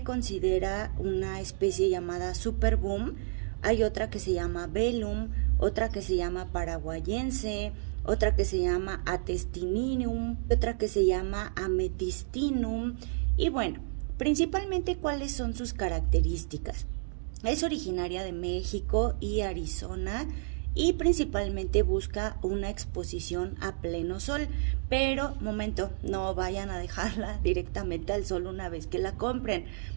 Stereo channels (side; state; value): left; silent; digital silence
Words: considera una especie llamada Superboom. Hay otra que se llama Velum, otra que se llama Paraguayense, otra que se llama Atestininium, otra que se llama Ametistinum. Y bueno, principalmente cuáles son sus características. Es originaria de México y Arizona y principalmente busca una exposición a pleno sol. Pero, momento, no vayan a dejarla directamente al sol una vez que la compren.